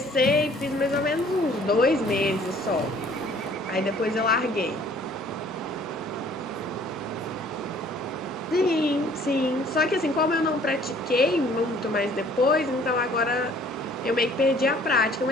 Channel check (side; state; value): both; normal; correlation 0.56